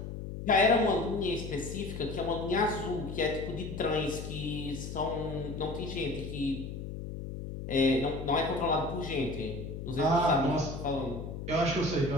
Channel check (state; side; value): noise; left; hum, 7 dB below the sound